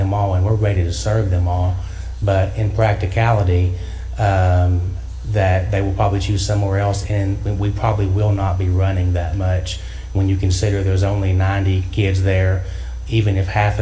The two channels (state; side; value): identical; both; correlation 1.00